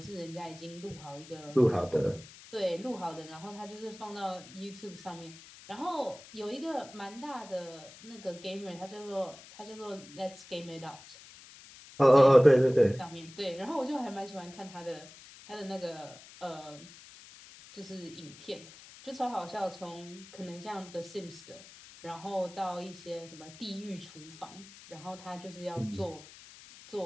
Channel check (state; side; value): noise; left; hiss, 19 dB below the sound